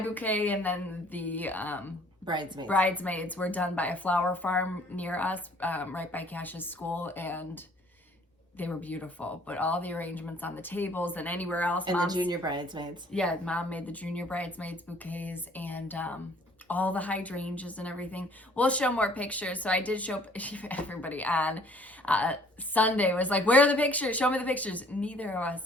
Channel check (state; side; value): normal; both; correlation 0.57